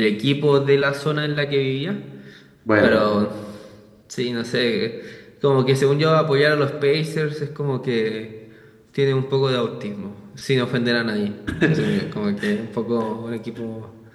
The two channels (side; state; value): both; identical; correlation 1.00